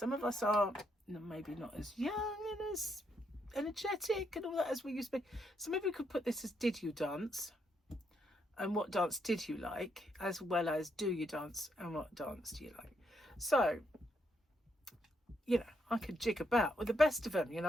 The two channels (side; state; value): both; normal; correlation 0.77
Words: of us are maybe not as young and as energetic and all that as we used to be. So maybe we could put this as did you dance, and what dance did you like, as well as do you dance and what dance do you like. So, you know, I could jig about with the best of them, you